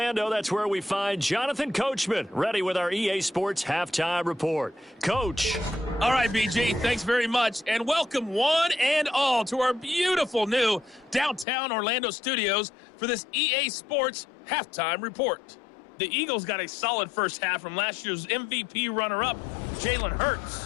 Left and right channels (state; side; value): drops out; right; at 11.5 s